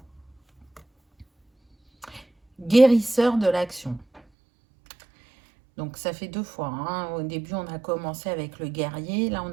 Guérisseur de l'action. Donc ça fait 2 fois. Hein. Au début, on a commencé avec le guerrier. Là, on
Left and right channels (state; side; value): drops out; left; at 4.2 s